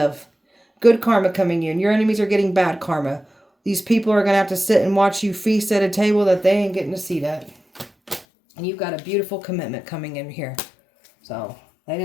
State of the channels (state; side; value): drops out; right; at 8.2 s